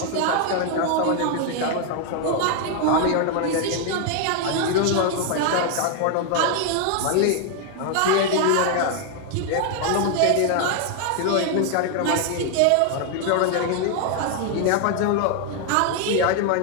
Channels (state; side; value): different; both; correlation 0.00